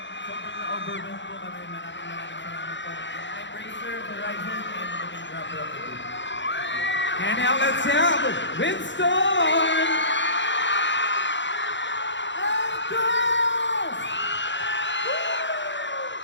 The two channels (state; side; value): late; right; 0.53 ms